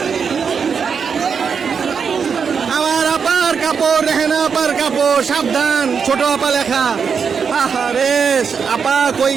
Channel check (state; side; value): quieter; left; 6.3 dB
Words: আমার আপার কাপড়, রেহানা আপার কাপড়। সাবধান ছোট আপা লেখা। আরে আপা কই